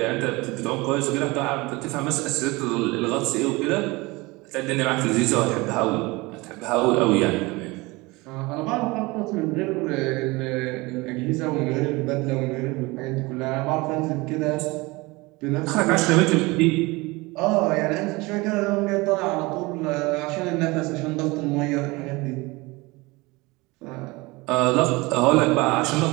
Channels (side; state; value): left; quieter; 23.3 dB